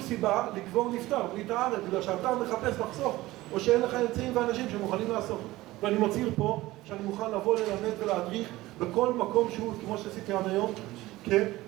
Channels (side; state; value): left; quieter; 18.0 dB